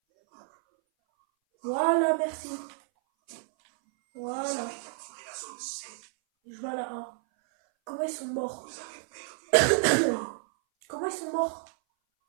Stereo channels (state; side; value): silent; left; 58 dB below the other